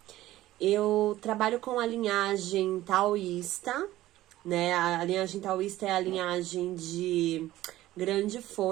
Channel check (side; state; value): left; quieter; 15.5 dB